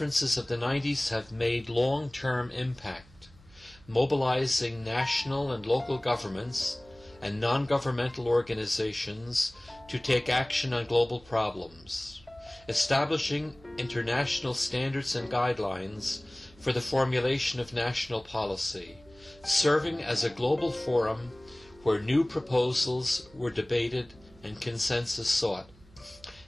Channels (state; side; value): noise; right; hum, 25 dB below the sound